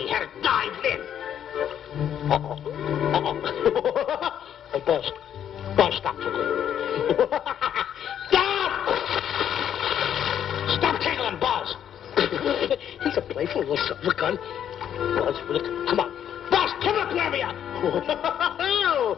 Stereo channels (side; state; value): right; quieter; 9.6 dB